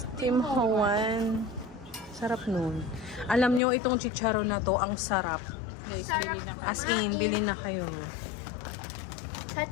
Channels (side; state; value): right; drops out; at 3.6 s